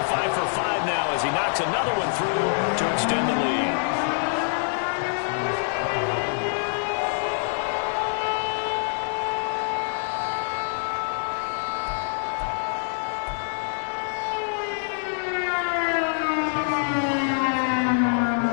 5 for 5 now as he knocks another one through to extend the lead.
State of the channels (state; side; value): silent; right; digital silence